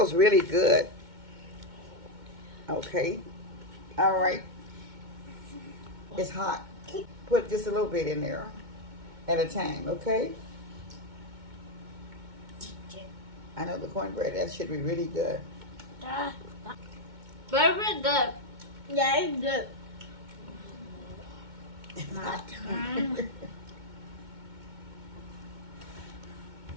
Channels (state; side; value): late; left; 2.2 ms